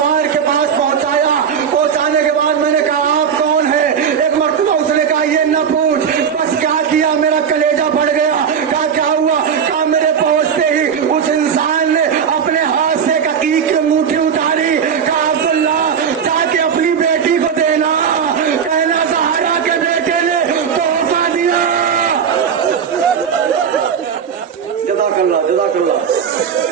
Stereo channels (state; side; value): quieter; left; 7.3 dB